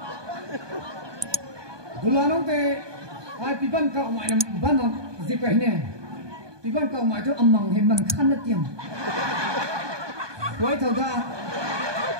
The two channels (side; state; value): left; late; 1.2 ms